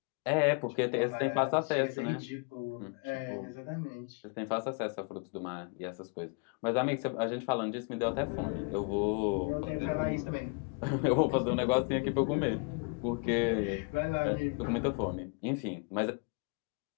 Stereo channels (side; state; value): right; quieter; 33.2 dB